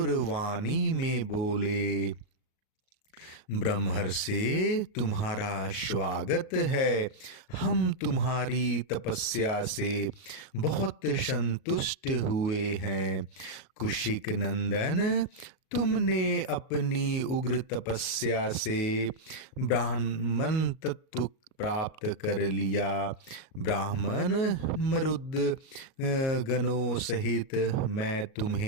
वाणी में बोले, ब्रह्मर्षि, तुम्हारा स्वागत है। हम तुम्हारी तपस्या से बहुत संतुष्ट हुए हैं। कुशिक नंदन, तुमने अपनी उग्र तपस्या से ब्राह्मण तत्व प्राप्त कर लिया। ब्राह्मण मरुद गणों सहित मैं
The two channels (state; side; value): late; right; 38 ms